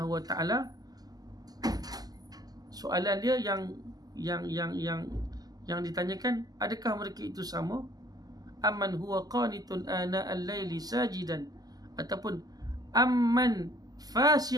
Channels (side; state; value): left; late; 0.18 ms